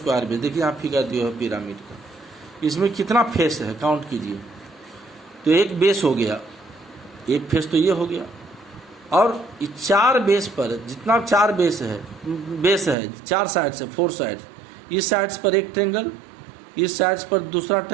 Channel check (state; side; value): drops out; left; at 13.0 s